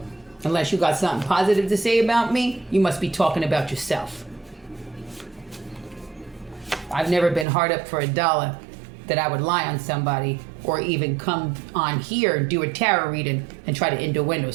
Unless you got something positive to say about me, you must be talking about yourself. I've never been hard up for $1 that I would lie on somebody or even come on here and do a tarot reading and try to innuendo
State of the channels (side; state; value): left; drops out; at 7.5 s